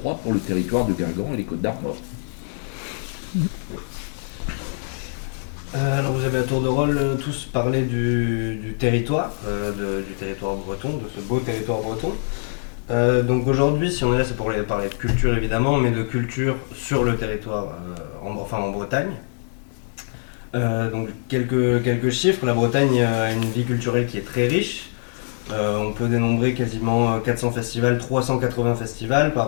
pour le territoire de Guingamp et les Côtes-d'Armor. Oui. Alors vous avez à tour de rôle tous parlé du territoire, du territoire breton, de ce beau territoire breton. Donc aujourd'hui, si on est là, c'est pour parler de culture évidemment, mais de culture sur le territoire, en Bretagne. Donc quelques chiffres. La Bretagne a une vie culturelle qui est très riche. On peut dénombrer quasiment 400 festivals, 380 festivals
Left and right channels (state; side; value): silent; right; digital silence